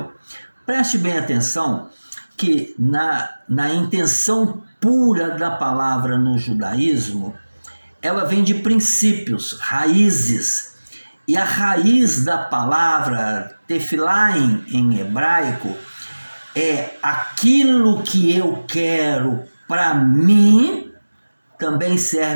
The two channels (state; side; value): inverted; both; correlation -1.00